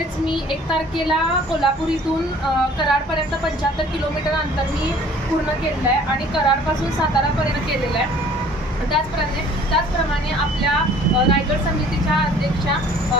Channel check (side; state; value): both; normal; correlation 0.52